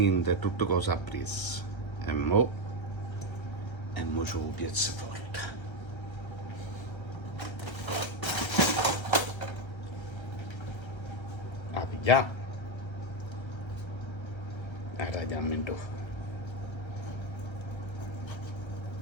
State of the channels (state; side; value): late; right; 1.3 ms